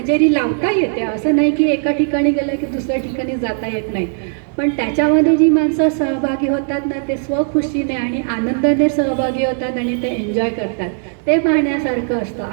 लावता येते. असं नाही की एका ठिकाणी गेलं की दुसऱ्या ठिकाणी जाता येत नाही, पण त्याच्यामध्ये जी माणसं सहभागी होतात ना ते स्वखुशीने आणि आनंदाने सहभागी होतात आणि ते एन्जॉय करतात, ते पाहण्यासारखं असतं.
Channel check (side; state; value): left; silent; digital silence